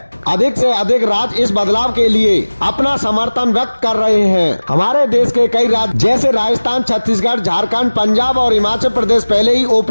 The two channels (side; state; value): both; inverted; correlation -1.00